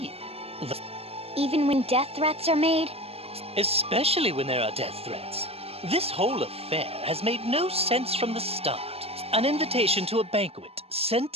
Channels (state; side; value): late; left; 0.29 ms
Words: the... Even when death threats are made? Especially when there are death threats. This whole affair has made no sense from the start. An invitation to a banquet